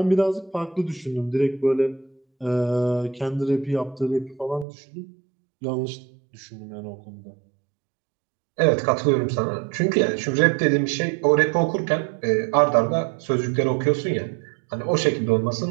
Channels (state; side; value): drops out; left; at 4.7 s